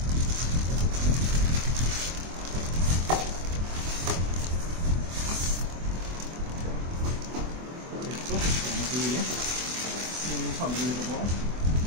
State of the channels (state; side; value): late; left; 24 ms